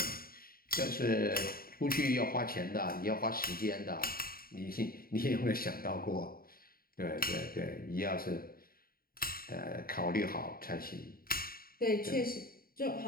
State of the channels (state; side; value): late; right; 0.43 ms